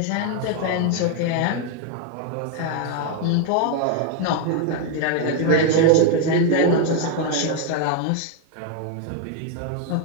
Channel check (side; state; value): both; different; correlation 0.01